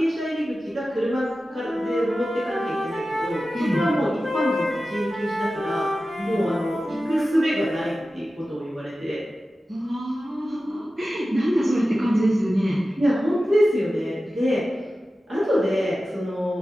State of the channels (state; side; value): normal; both; correlation 0.94